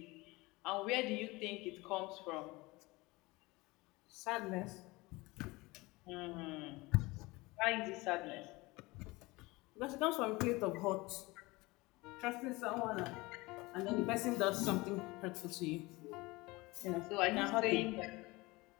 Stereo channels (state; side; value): quieter; right; 22.6 dB